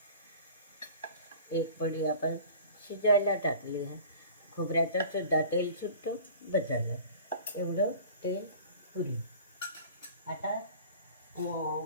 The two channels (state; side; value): inverted; both; correlation -0.43